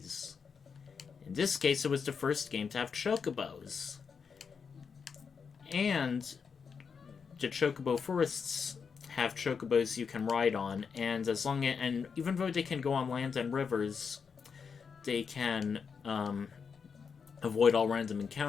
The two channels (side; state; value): right; quieter; 6.0 dB